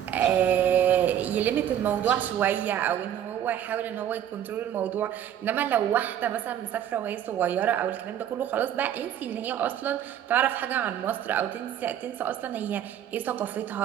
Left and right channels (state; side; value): quieter; left; 10.3 dB